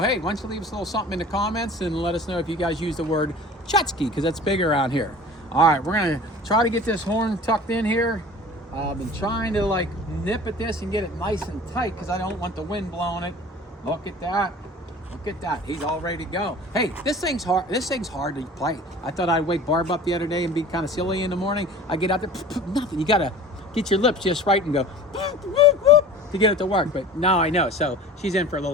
why don't you leave us a little something in the comments and let us know if you guys use the word Tchotchke, because that's big around here. All right, we're gonna try to get this horn tucked in here. I've been trying to like nip at this and get it nice and tight because I don't want the wind blowing it. Look at that. Look at that. He's all ready to go. Hey, this thing's hard. This thing's hard to play. I thought I'd wake Barb up the other day and be kind of silly in the morning. I get out there, nothing. You gotta get your lips just right and go to get it to work. But now I know. So she's in for a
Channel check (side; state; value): both; normal; correlation 0.42